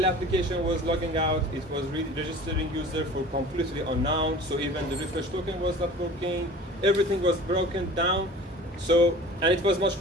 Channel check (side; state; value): both; normal; correlation 0.42